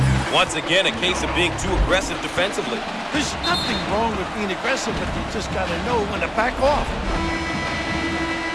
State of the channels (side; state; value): both; identical; correlation 1.00